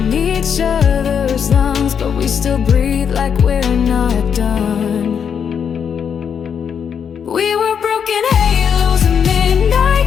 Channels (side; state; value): right; quieter; 7.4 dB